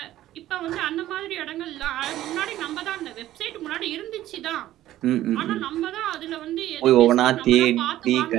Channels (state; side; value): quieter; left; 13.9 dB